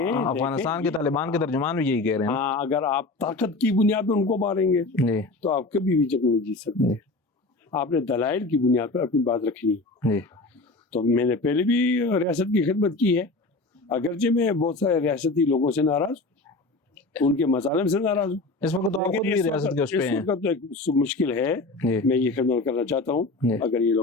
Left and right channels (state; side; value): quieter; right; 3.2 dB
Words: کے طالبان کے ترجمان بھی یہی کہہ رہے ہیں. ہاں، اگر آپ طاقت کی بنیاد پہ ان کو ماریں گے جی تو آپ کبھی بھی جنگ نہیں جیت سکتے. آپ نے دلائل کی بنیاد پر اپنی بات رکھنی. جی تو میں نے پہلے بھی ریاست کی خدمت کی ہے، اگرچہ میں بہت سارے ریاستی لوگوں سے ناراض ہوں، ان کے مظالم سے ناراض ہوں. اس وقت تو آپ خود بھی ریاست کے اس پہ ہیں. اس وقت تو ایک مشکل ہے. میں یہ خدمت کرنا چاہتا ہوں اگر یہ